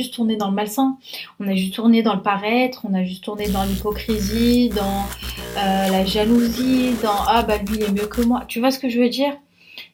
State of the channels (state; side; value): identical; both; correlation 1.00